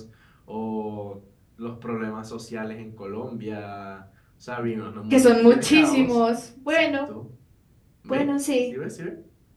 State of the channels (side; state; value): both; identical; correlation 1.00